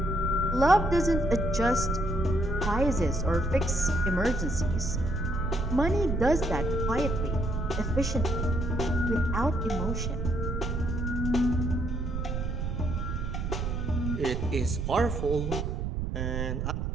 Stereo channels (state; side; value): noise; right; rumble, 1 dB below the sound